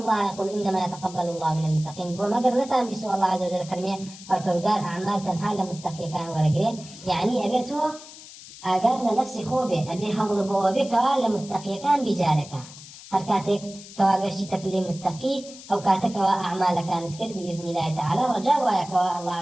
يقول إنما يتقبل الله من المتقين وما قرنتان بسوء الله عز وجل فرميه فالبرقال أعمال تنهى لمتقي كان ورقريه يعني أبيته أقال لنفسي خوبه أبي هول بوابك لمتقي كان بجارك هركاتك كواقشتك لمتقي أو كاتك وأعمال كانت كر بإذن الله تعالى رجاء وياك الله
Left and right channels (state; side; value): noise; left; hiss, 17 dB below the sound